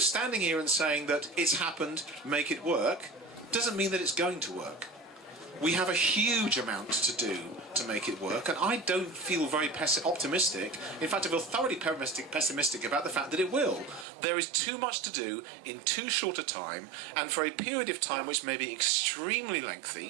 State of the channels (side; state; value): left; drops out; at 14.1 s